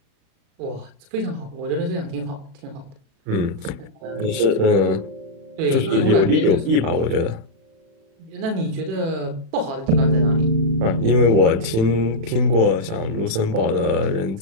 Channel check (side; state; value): left; late; 36 ms